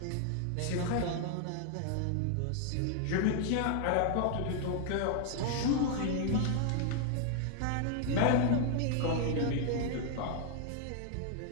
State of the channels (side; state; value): both; different; correlation 0.00